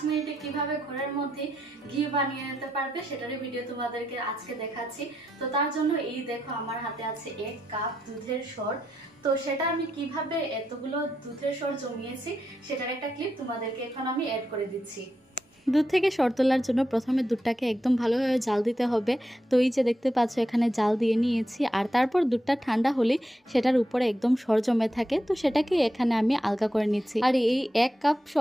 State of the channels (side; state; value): both; normal; correlation 0.84